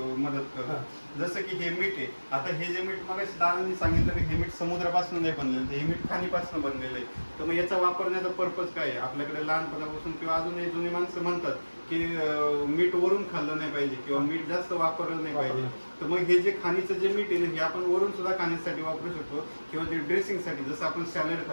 मदत करतो. जसं की हे मीठ आहे, आता हे जे मीठ मग दादांनी सांगितलं की हे मीठ समुद्रापासून नाही बनलेलं, हे मीठ खाणीपासून बनलेलं आहे. तर मग याचा वापरण्याचा पर्पज काय आहे? आपल्याकडे लहानपणापासून किंवा अजूनही जुनी माणसं म्हणतात की मीठ वरून खाल्लं नाही पाहिजे किंवा मीठ जास्त वापरलं नाही पाहिजे. तर मग हे जे खाणीचं जे मीठ आहे हे आपण वरून सुद्धा खाण्यासाठी वापरू शकतो, किंवा जे ड्रेसिंगसाठी, जसं आपण सॅलड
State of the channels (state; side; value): inverted; both; correlation -1.00